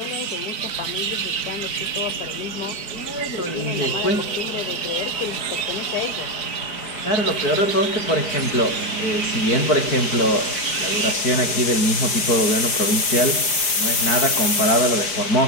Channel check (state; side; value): late; right; 5.0 ms